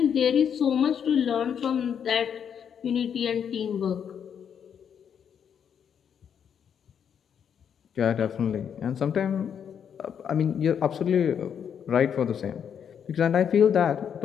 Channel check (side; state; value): right; quieter; 8.0 dB